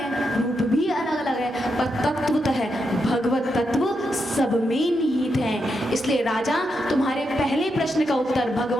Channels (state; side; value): normal; both; correlation 0.83